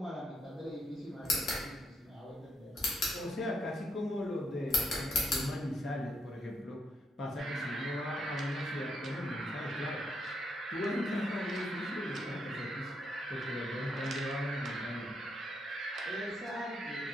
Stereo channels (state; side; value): normal; both; correlation 0.77